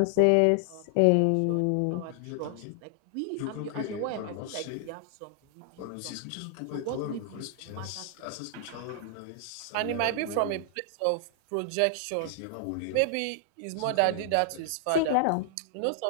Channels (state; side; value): different; both; correlation 0.00